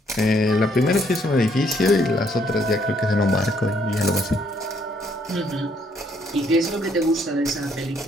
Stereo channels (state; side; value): normal; both; correlation 0.68